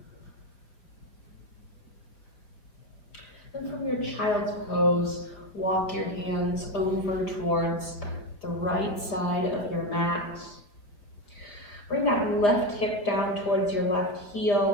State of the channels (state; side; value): late; right; 5.0 ms